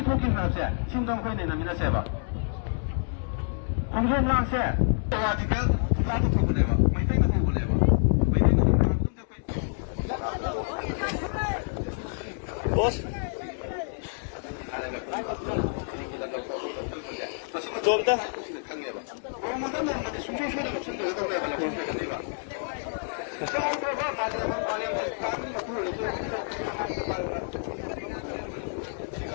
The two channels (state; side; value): silent; right; digital silence